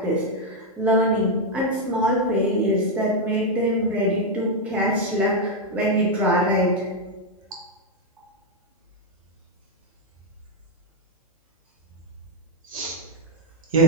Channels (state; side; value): normal; both; correlation 0.00